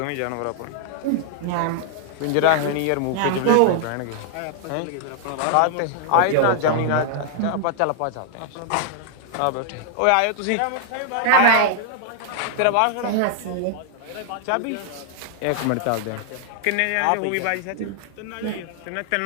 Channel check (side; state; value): both; different; correlation 0.00